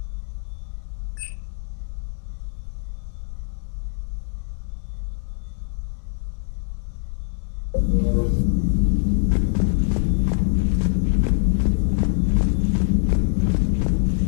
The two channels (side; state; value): right; silent; digital silence